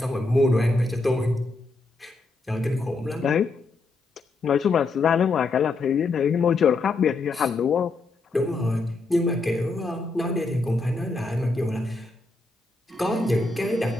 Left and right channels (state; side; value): quieter; right; 3.5 dB